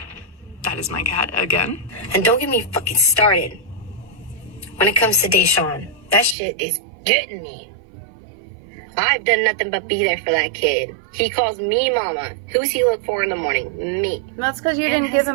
That is my cat again. And don't get me fucking started when it comes to Deshaun. That shit is getting me. I've done nothing but be there for that kid. He calls me mama. Who's he look for in the morning? Me. That's because you didn't give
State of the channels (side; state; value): left; drops out; at 6.4 s